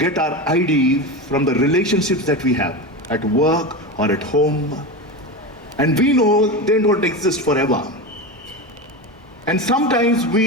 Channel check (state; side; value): normal; both; correlation 0.21